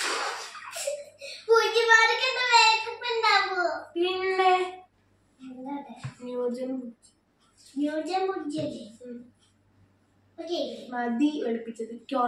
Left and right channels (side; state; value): both; identical; correlation 1.00